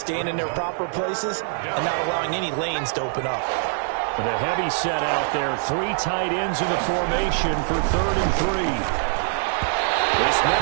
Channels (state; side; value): silent; left; digital silence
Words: in their proper places and not allowing any lanes to open up. With a heavy set out there, 3 tight ends in the formation for 3rd and 3. This